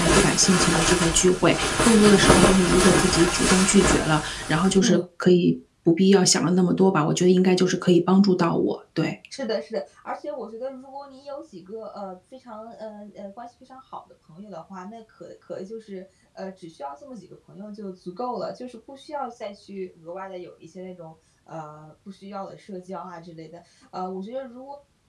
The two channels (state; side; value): identical; both; correlation 1.00